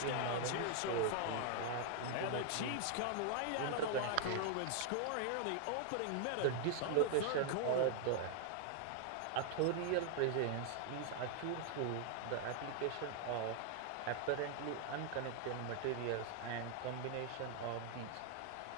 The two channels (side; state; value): both; different; correlation 0.00